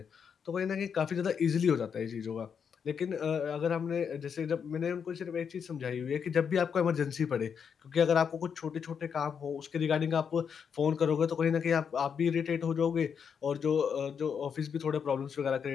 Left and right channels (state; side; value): quieter; right; 7.0 dB